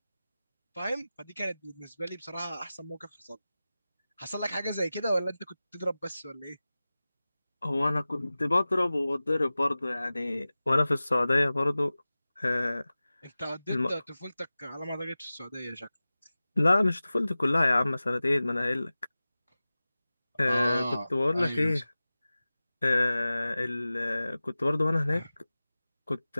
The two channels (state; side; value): inverted; both; correlation -0.97